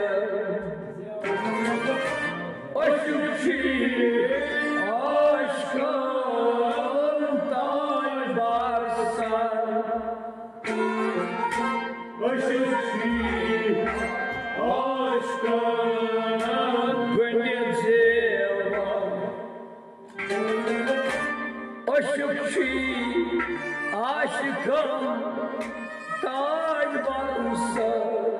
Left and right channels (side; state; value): both; identical; correlation 1.00